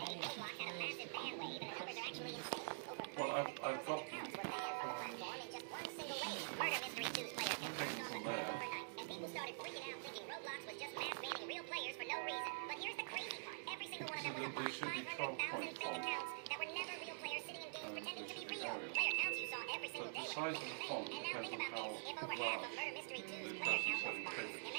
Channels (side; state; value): left; silent; digital silence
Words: Roblox had a massive ban wave, and the numbers are actually insane. Over 500,000 accounts were banned from the platform in just one single wave. Murder Mystery 2's player count dropped overnight, and people started freaking out thinking Roblox was just mass banning real players for no reason. But here's the crazy part. Every single one of them was a bot. 500,000 fake accounts that were never real players sitting in games pretending to be real. Player counts you saw every single day were insane. And now think about this. If over half of Murder Mystery 2's player count was bots,